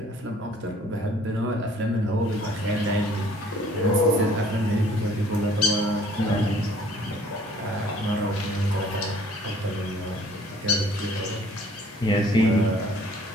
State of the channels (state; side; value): normal; both; correlation 0.56